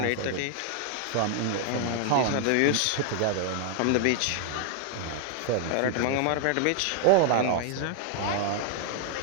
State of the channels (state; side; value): different; both; correlation 0.00